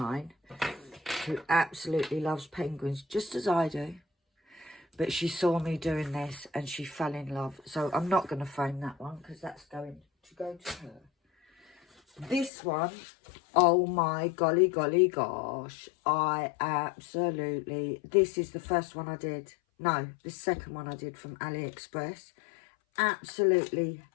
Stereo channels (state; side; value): drops out; right; at 12.5 s